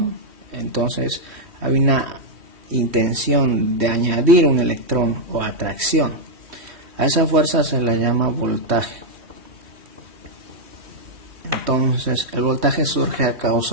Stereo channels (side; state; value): left; late; 3.1 ms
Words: entonces hay una intención de añadir un electrón o atracción. A esa fuerza se le llama voltaje. Entonces el voltaje surge a